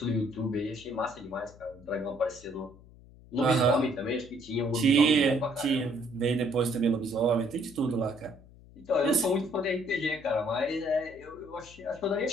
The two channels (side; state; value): left; noise; hum, 22 dB below the sound